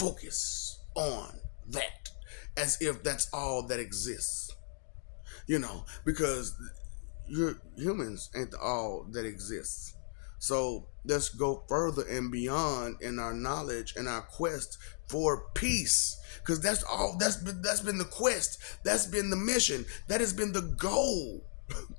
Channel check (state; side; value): silent; right; digital silence